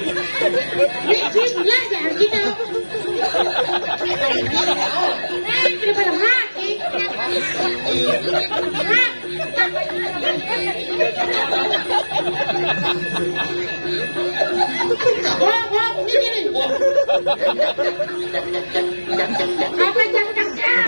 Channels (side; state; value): both; inverted; correlation -1.00